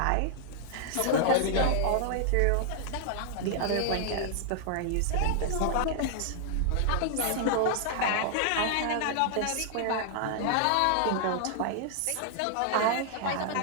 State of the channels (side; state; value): both; different; correlation -0.01